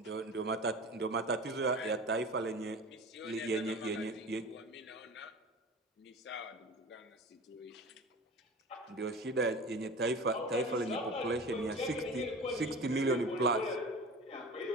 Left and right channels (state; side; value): normal; both; correlation 0.36